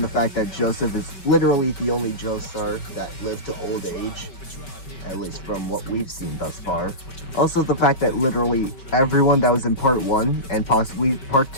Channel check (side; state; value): right; late; 5.2 ms